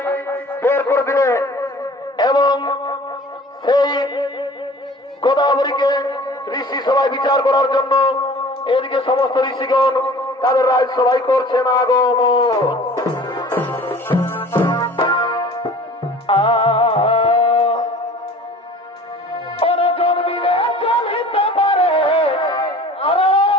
বের করে দিলে এবং সেই গোদাবরীকে ঋষি সবাই বিচার করার জন্য এদিকে সমস্ত ঋষিগণ তাদের রাজ সবাই করছেন আগমন। জন্মিলে চলিতে পারে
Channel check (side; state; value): both; normal; correlation 0.45